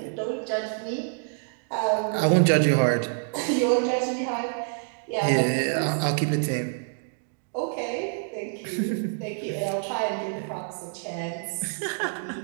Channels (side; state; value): left; silent; digital silence